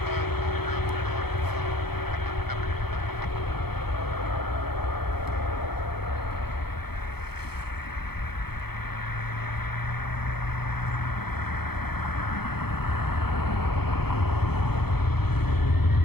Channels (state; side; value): late; right; 0.96 ms